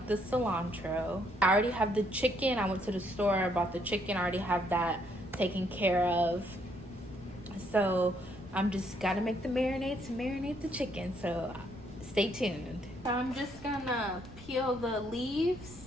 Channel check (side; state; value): left; noise; rumble, 20 dB below the sound